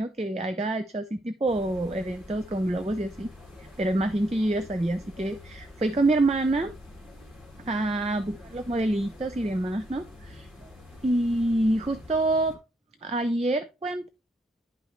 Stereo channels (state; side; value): normal; both; correlation 0.75